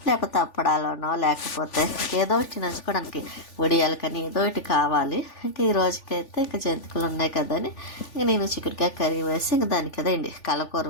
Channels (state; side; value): late; right; 3.4 ms